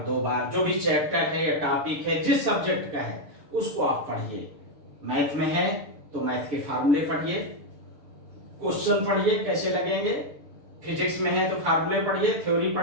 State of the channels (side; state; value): left; late; 6.8 ms